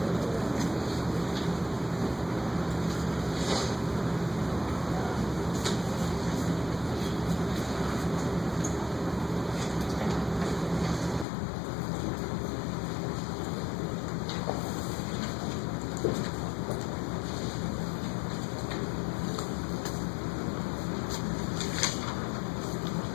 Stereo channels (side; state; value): right; drops out; at 11.2 s